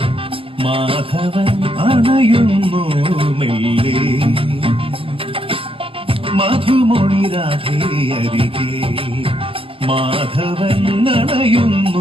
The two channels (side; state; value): left; late; 0.26 ms